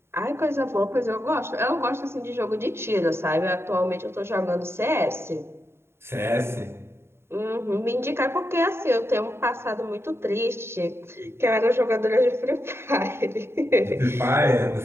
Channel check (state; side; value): late; left; 0.12 ms